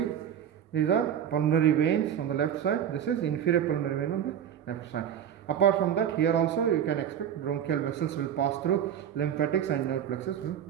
These are pulmonary veins on the left side. This is inferior pulmonary vein on the left side. Apart from that, here also you can expect bronchial vessels will pass through, lymphatics and nerve plexus will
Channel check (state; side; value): quieter; left; 9.4 dB